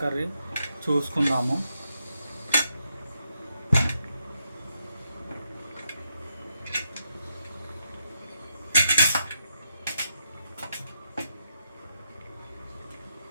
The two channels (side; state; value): both; inverted; correlation -0.81